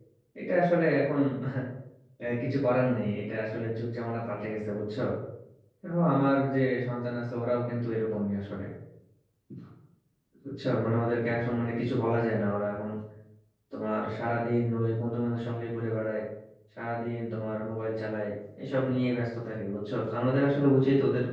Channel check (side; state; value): both; identical; correlation 1.00